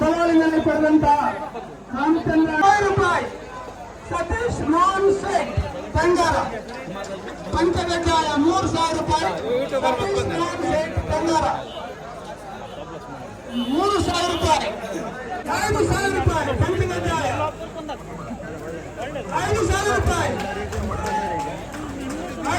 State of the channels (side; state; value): both; identical; correlation 1.00